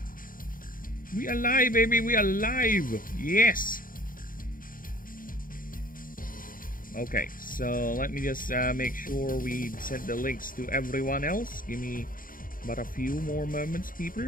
We alive, baby! We alive! Yes! Okay, so let me just make sure we send the links to everyone else. Give me about a few more moments,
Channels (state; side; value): late; right; 0.40 ms